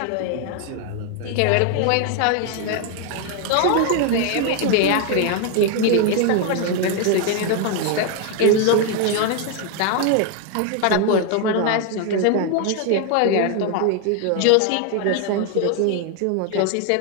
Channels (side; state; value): both; different; correlation 0.01